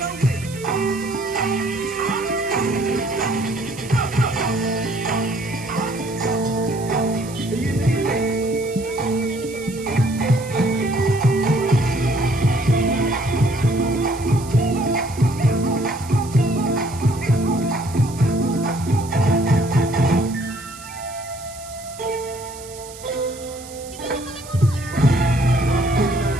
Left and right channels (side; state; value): right; noise; hiss, 17 dB below the sound